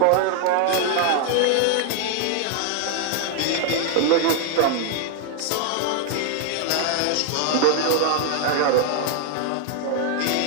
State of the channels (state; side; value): different; both; correlation 0.00